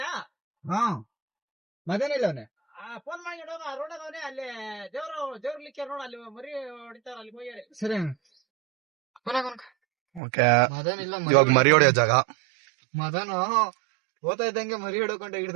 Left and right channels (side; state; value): left; drops out; at 10.2 s